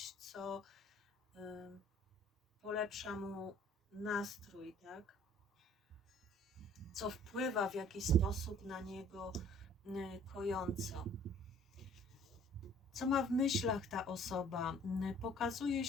co polepsza mu nastrój, tak? Co wpływa w jakiś sposób na niego kojąco. Co ma w myślach ta osoba? Pokazuje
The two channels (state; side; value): normal; both; correlation 0.54